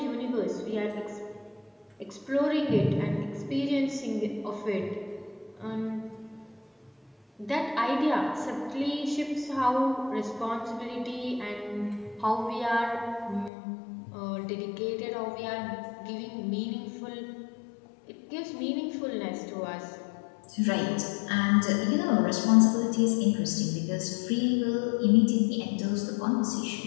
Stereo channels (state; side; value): drops out; right; at 13.5 s